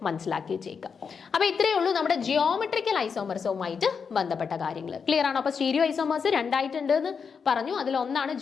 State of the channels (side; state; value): right; quieter; 6.0 dB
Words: മനസ്സിലാക്കി വെച്ചേക്കുക. അപ്പൊ ഇത്രയേ ഉള്ളൂ നമ്മുടെ ജിയോമെട്രിക്കൽ ഐസോമർസുമായിട്ട് ബന്ധപ്പെട്ട കാര്യങ്ങൾ. ക്ലിയർ ആണോ? അപ്പോൾ സ്റ്റീരിയോ ഐസോമേഴ്സ് രണ്ടായിട്ടുണ്ട് എന്ന് പറഞ്ഞു. അതിലൊന്നാണ്